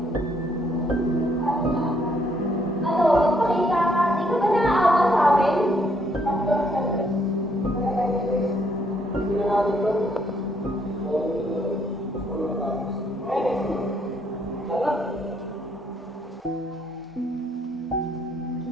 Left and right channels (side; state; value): both; normal; correlation 0.70